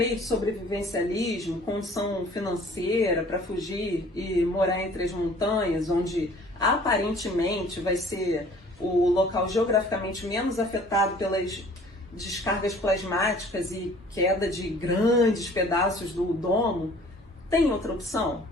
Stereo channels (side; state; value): both; normal; correlation 0.52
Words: de sobrevivencialismo, condição financeira para fugir e morar entre as montanhas, onde aparentemente vai ser o local geograficamente menos afetado pelas descargas plasmáticas e queda de grandes pedaços do domo, tem outra opção?